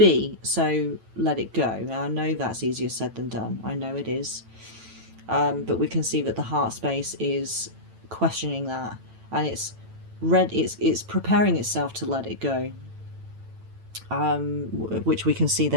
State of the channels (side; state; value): left; late; 9.0 ms